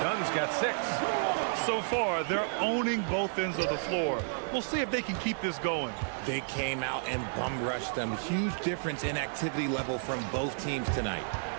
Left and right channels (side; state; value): left; silent; digital silence